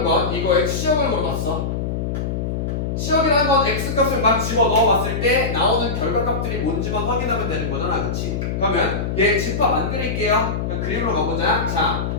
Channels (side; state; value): left; noise; hum, 2 dB below the sound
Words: 건 이거의 치역을 물어봤어. 치역이라는 건 x값을 막 집어 넣어봤을 때 나오는 결과값들이 뭔지만 확인하면 되는 거잖아. 그치? 그러면 얘 집합 만들게요. 그림으로 가보자. 자,